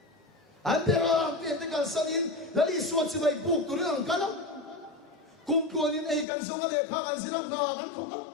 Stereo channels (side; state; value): right; drops out; at 6.2 s